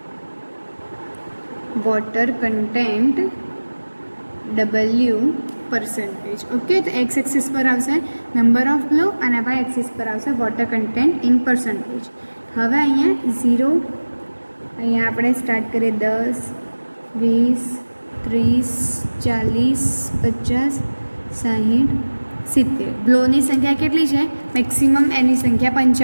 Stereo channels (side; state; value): both; inverted; correlation -1.00